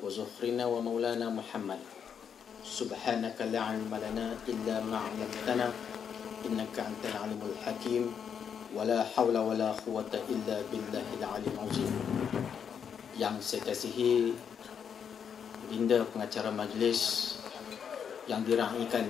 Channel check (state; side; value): quieter; right; 7.5 dB